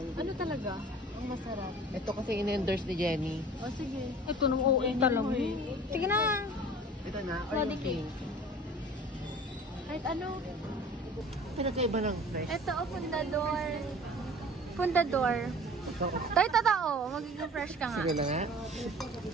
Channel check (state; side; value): normal; both; correlation 0.44